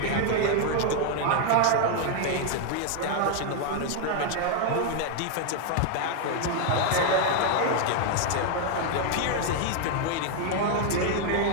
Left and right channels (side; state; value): both; different; correlation 0.00